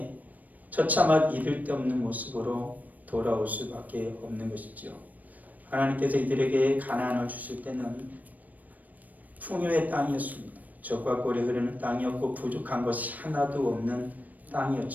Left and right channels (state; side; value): late; left; 0.078 ms